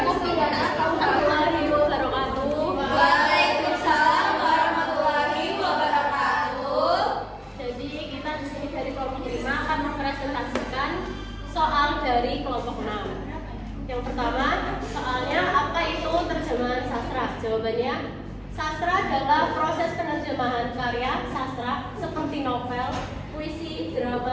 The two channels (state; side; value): identical; both; correlation 1.00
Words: Pidana Tahun 2000. Waalaikumsalam warahmatullahi wabarakatuh. Jadi kita di sini dari kelompok 5 akan mempresentasikan soal dari kelompok 6. Yang pertama, soalnya apa itu terjemahan sastra? Jawabannya, sastra adalah proses penerjemahan karya sastra seperti novel, puisi,